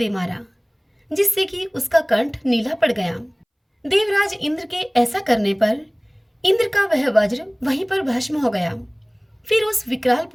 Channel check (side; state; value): both; identical; correlation 1.00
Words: मारा, जिससे कि उसका कंठ नीला पड़ गया। देवराज इंद्र के ऐसा करने पर इंद्र का वह वज्र वहीं पर भस्म हो गया। फिर उस विकराल